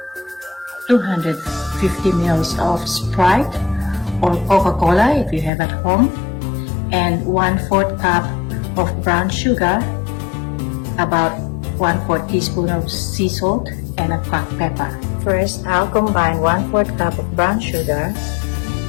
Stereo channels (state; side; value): drops out; right; at 5.5 s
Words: 250 ml of Sprite or Coca-Cola if you have at home, and 1/4 cup of brown sugar, about 1/4 teaspoon of sea salt, and a cracked pepper. First, I'll combine 1/4 cup of brown sugar,